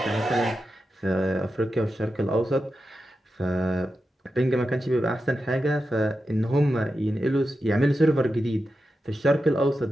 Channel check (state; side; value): normal; both; correlation 0.90